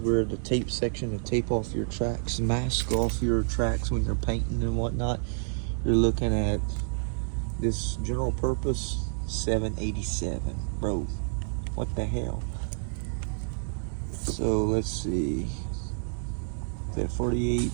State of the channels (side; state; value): left; silent; digital silence